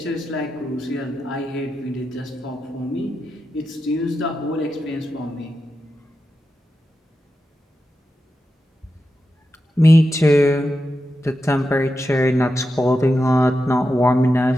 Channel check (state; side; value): normal; both; correlation 0.89